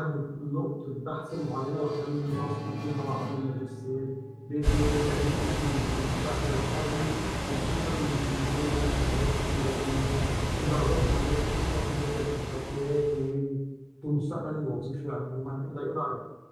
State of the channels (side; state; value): both; identical; correlation 1.00